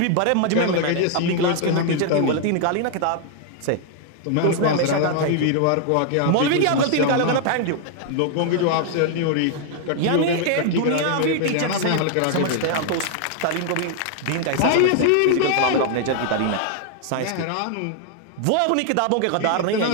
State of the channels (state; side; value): different; both; correlation 0.00